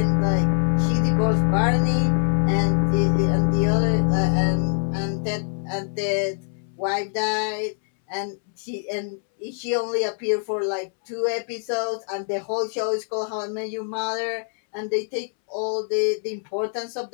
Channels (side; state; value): right; silent; 63 dB below the other